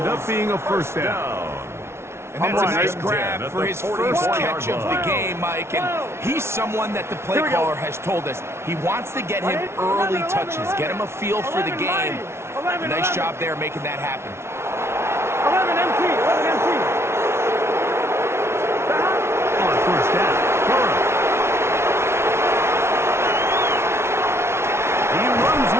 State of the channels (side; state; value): left; late; 0.13 ms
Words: up being a 1st down. And that's a nice grab for his first catch of the game, Mike. And he's someone that the play caller has told us he wants to get him early touches, get him a feel for the game. Nice job there making that happen. 11 empty. On 1st down, Burrow. He runs